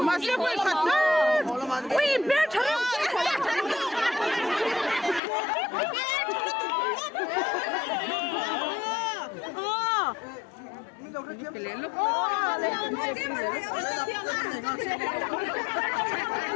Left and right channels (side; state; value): right; drops out; at 5.2 s